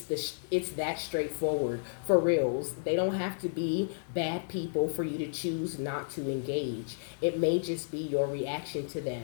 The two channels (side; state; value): right; silent; 56 dB below the other